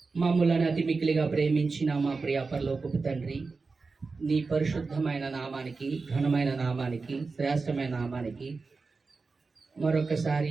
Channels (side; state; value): left; quieter; 4.3 dB